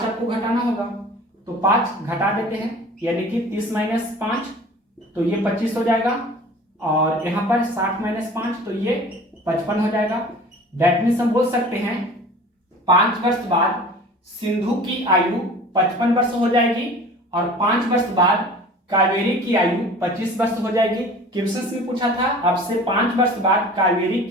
आपको घटाना होगा। तो 5 घटा देते हैं, यानी कि 30 - 5, तो ये 25 हो जाएगा। और यहाँ पर 60 - 5, तो ये 55 हो जाएगा। दैट मीन्स हम बोल सकते हैं 5 वर्ष बाद सिंधु की आयु 55 वर्ष हो जाएगी, और 5 वर्ष बाद कावेरी की आयु 25 वर्ष हो जाएगी। क्वेश्चन में पूछा था अब से 5 वर्ष बाद कावेरी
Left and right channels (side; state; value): both; normal; correlation 0.43